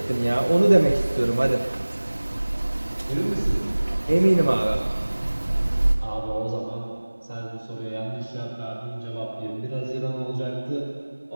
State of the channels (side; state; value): both; inverted; correlation -1.00